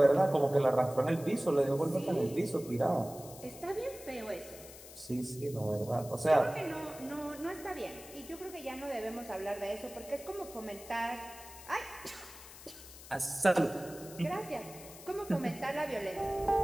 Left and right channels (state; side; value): noise; left; hiss, 16 dB below the sound